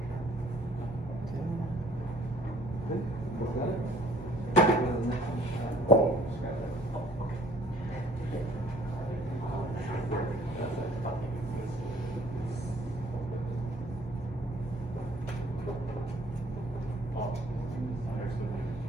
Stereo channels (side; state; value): both; normal; correlation 0.58